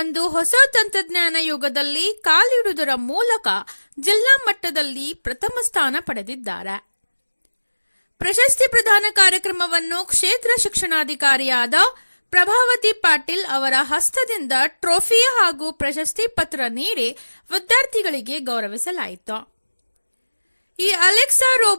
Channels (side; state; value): both; inverted; correlation -1.00